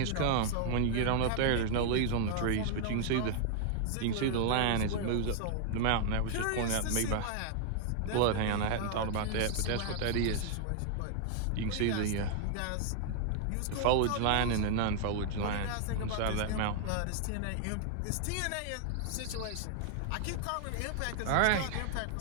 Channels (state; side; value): different; both; correlation -0.01